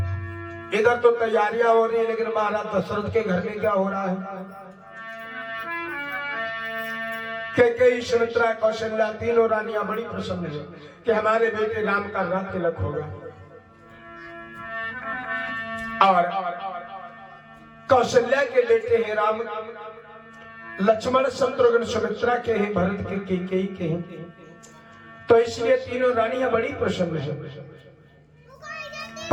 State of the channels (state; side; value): identical; both; correlation 1.00